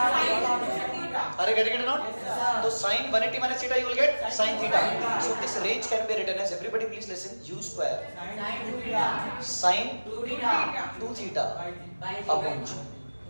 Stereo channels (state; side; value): inverted; both; correlation -1.00